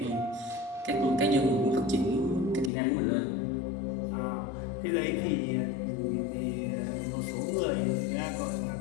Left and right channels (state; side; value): drops out; right; at 2.7 s